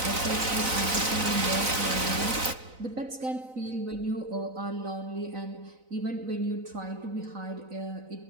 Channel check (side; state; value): left; late; 4.0 ms